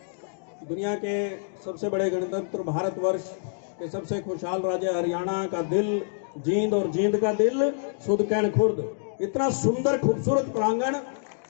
दुनिया के सबसे बड़े गणतंत्र भारतवर्ष के सबसे खुशहाल राज्य हरियाणा का दिल जींद, और जींद का दिल सुदकैन खुर्द। इतना सुंदर खूबसूरत प्रांगण,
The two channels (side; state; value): right; silent; digital silence